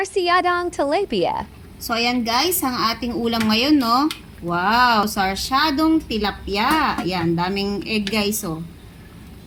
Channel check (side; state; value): both; identical; correlation 1.00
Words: tilapia. So, ayan guys, ang ating ulam ngayon, no? Wow, sarsyadong tilapia. Ayan, daming egg guys, oh.